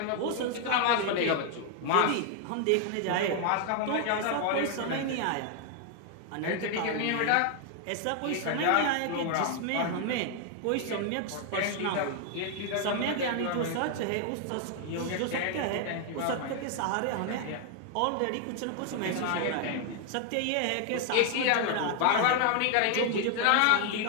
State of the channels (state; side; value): different; both; correlation 0.00